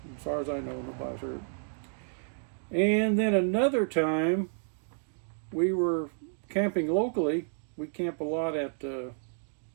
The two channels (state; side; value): silent; left; digital silence